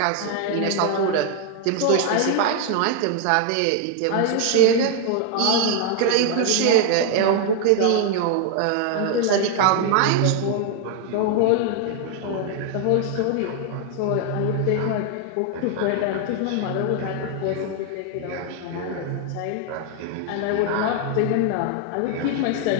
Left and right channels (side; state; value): both; different; correlation 0.00